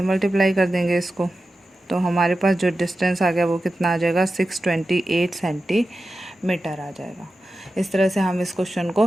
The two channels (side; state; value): both; normal; correlation 0.93